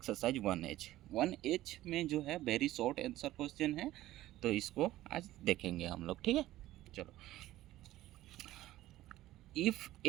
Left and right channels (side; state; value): left; quieter; 15.3 dB